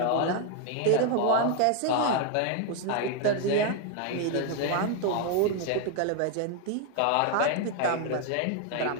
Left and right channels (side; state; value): both; different; correlation 0.00